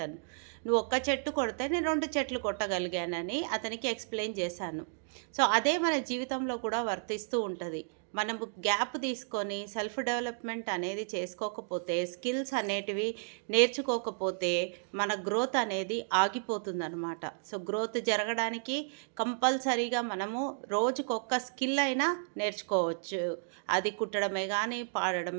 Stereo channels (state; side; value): silent; left; digital silence